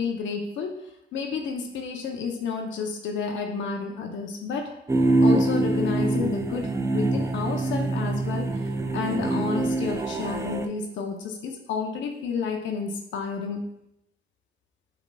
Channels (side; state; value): both; normal; correlation 0.67